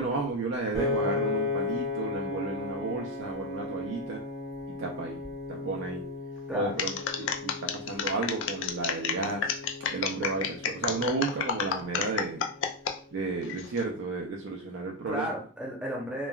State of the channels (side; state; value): both; normal; correlation 0.07